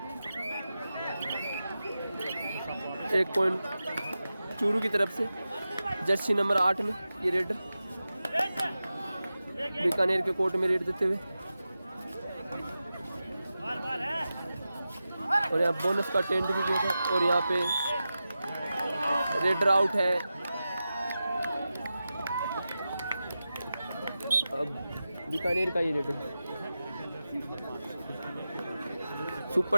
1 पॉइंट चूरू की तरफ से जर्सी नंबर 8 में ये रेडर बीकानेर के कोर्ट में रेड देते हुए। और यहाँ बोनस का टेंट भी किया था। और यहाँ पे रेडर आउट है। अब बीकानेर का ये रेडर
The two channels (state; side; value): inverted; both; correlation -0.93